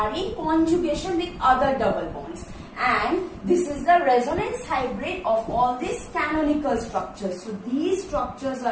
in conjugation with other double bonds. And this is the resonance hybrid of all these canonical structures. So these structures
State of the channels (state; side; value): identical; both; correlation 1.00